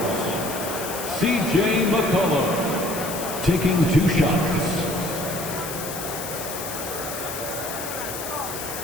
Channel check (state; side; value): noise; left; hiss, 8 dB below the sound